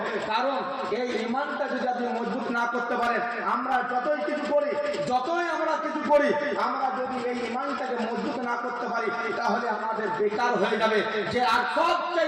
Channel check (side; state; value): both; identical; correlation 1.00